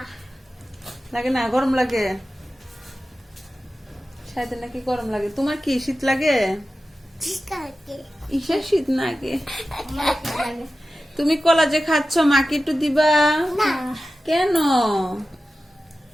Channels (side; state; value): both; normal; correlation 0.94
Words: লাগে না? গরম লাগে? শায়দের নাকি গরম লাগে। তোমার কি শীত লাগে? ইসের শীত লাগে। তুমি কলা যে খাচ্ছ মাকে একটু দিবা? কেন?